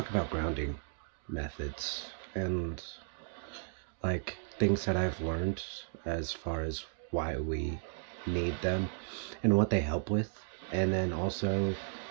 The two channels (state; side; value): silent; left; digital silence